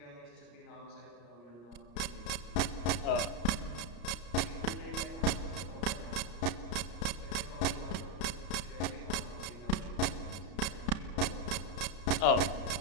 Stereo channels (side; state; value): right; late; 33 ms